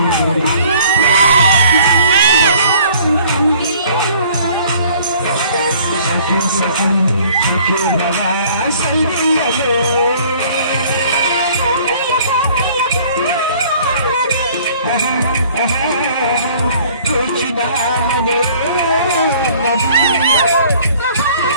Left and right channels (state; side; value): inverted; both; correlation -0.54